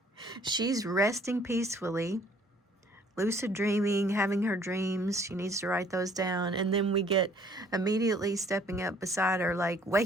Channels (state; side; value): normal; both; correlation 0.59